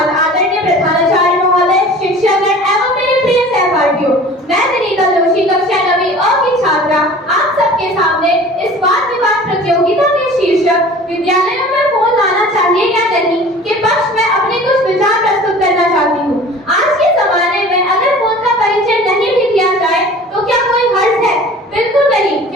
आदरणीय प्रधानाचार्य महोदय, शिक्षकगण एवं मेरे प्रिय सहपाठियों। मैं विनीता जोशी कक्षा 9वीं अ की छात्रा आप सबके सामने इस वाद विवाद प्रतियोगिता के शीर्षक विद्यालयों में फोन लाना चाहिए या नहीं के पक्ष में अपने कुछ विचार प्रस्तुत करना चाहती हूँ। आज के जमाने में अगर फोन का परिचय नहीं भी किया जाए तो क्या कोई हर्ज है? बिल्कुल नहीं,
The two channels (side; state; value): both; normal; correlation 0.43